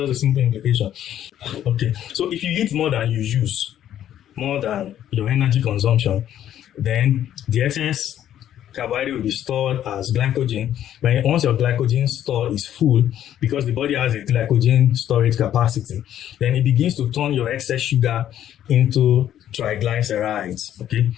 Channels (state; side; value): quieter; right; 11.1 dB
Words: a simple implication. Okay, so if you eat more than you use, more than your energy consumption, then the excess carbohydrate will be stored as glycogen. Once your glycogen store is full, because the body has a glycogen storage capacity, then it begins to turn your excess sugar into triglycerides. Okay,